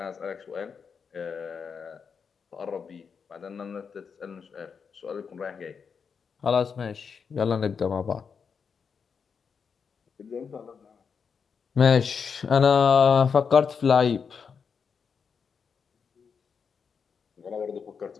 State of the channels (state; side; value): quieter; right; 6.1 dB